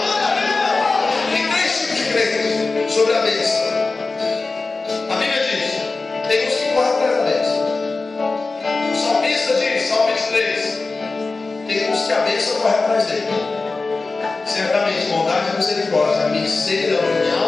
Tem 3 tipos de crentes sobre a bênção. A Bíblia diz, tem uns que correm atrás da bênção. O salmista diz, Salmo 23, tem uns que a bênção corre atrás dele. Certamente, bondade e misericórdia me seguirão em minha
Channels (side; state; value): right; quieter; 3.7 dB